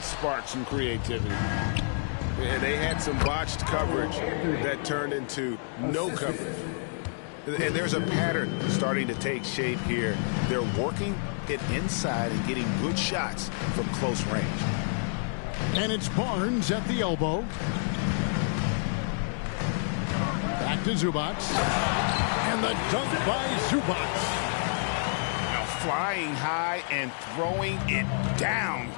spark some creativity. Yeah, they had some botched coverage that turned into no coverage. And there's a pattern starting to take shape here. They're working it inside and getting good shots from close range. And it's Barnes at the elbow. Back to Zubac. And the dunk by Zubac. Now flying high and throwing it down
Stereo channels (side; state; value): right; silent; digital silence